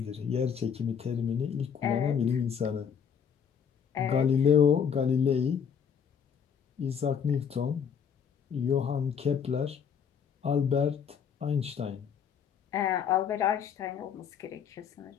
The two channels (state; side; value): quieter; right; 7.4 dB